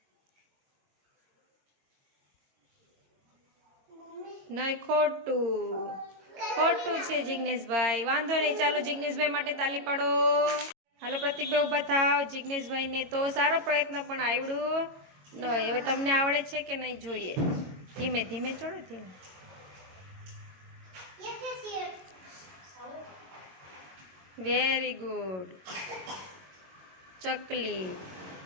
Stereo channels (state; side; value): late; left; 22 ms